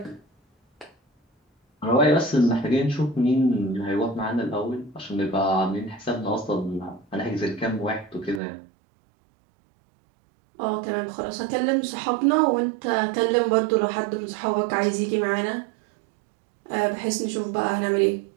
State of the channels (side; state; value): left; drops out; at 8.4 s